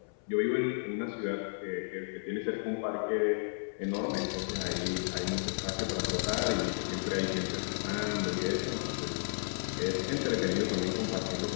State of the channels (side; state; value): right; silent; 56 dB below the other